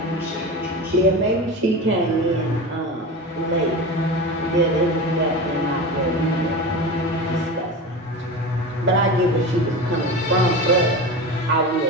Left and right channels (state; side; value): normal; both; correlation 0.27